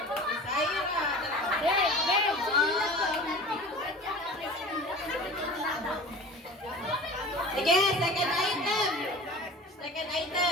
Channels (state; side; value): normal; both; correlation 0.38